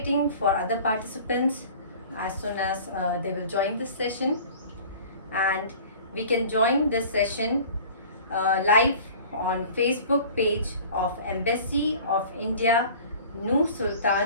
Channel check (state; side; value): inverted; both; correlation -0.44